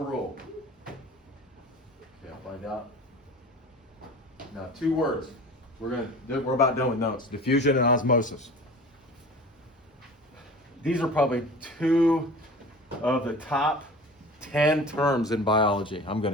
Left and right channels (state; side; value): normal; both; correlation 0.39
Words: Okay, I'll find out. Now, 2 words. We're about done with notes. Diffusion and osmosis. These are probably 2 of the top 10 terms in biology, I'm going